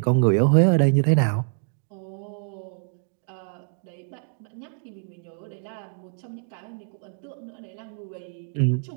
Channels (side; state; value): left; silent; digital silence